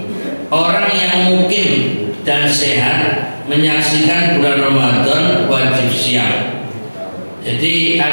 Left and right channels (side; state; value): both; inverted; correlation -1.00